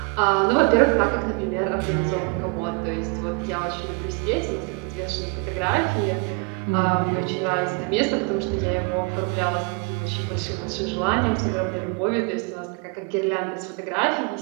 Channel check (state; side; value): quieter; left; 34.5 dB